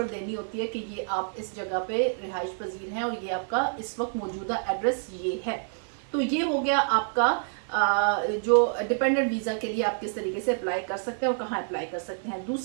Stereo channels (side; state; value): left; silent; digital silence